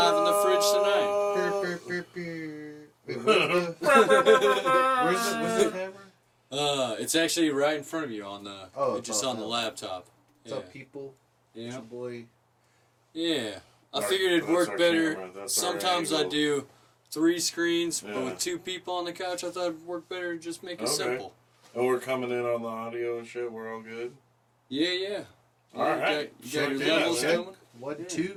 in the fridge tonight. Wait, where's the camera? It's actually right in front of you on the it's just on the laptop. What's up, people? It's Yeah. your boy. Yeah. I Our- figured it'd that's work our better. camera, that's our Sometimes I angle. do 3 screens, but Yeah. with 2 people on the couch, I thought it'd work better to just make it Okay. simple. And we're coming in on the audio and shit. We're all good. Yeah. All right. You got your Check it out, levels man. coming? 1,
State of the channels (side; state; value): both; identical; correlation 1.00